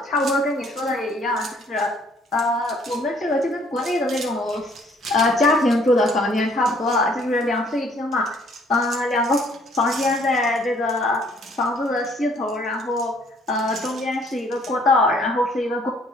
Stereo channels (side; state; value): both; normal; correlation 0.61